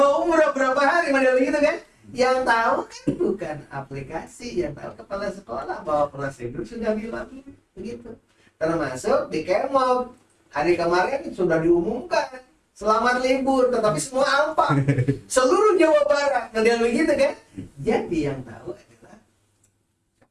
umroh berapa hari model gitu kan, yang tahu kan bukan aplikasi, yang tahu kepala sekolah bahwa prosedur sudah dilalui begitu. Termasuk di Kemop hari kemarin sudah diumumkan selamat libur, tetapi semua alpa seluruh Jawa Barat model begitu kan. Jadi yang tahu adalah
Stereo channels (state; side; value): identical; both; correlation 1.00